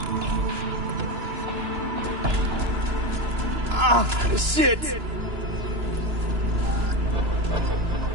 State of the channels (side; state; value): left; late; 2.9 ms